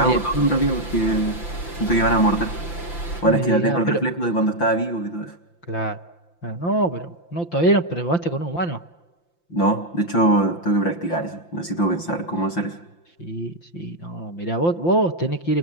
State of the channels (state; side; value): late; right; 5.8 ms